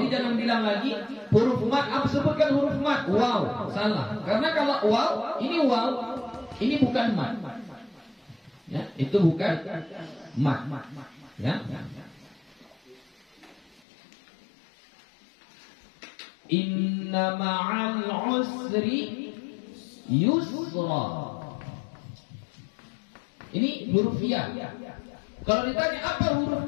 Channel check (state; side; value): drops out; right; at 13.8 s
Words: jangan bilang lagi huruf mad. Apa sebutkan huruf mad? Waw, salah. Karena kalau waw, ini bukan mad. Ya, itu bukan mad. Ya. Inna ma'al usri yusra. Ini huruf ya. Kalau ditanya apa huruf